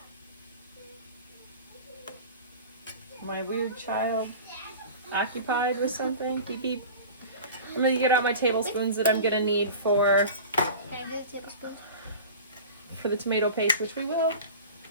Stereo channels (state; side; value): inverted; both; correlation -0.36